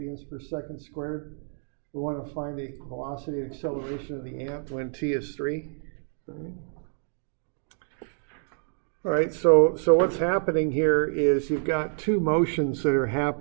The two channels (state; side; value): silent; left; 60 dB below the other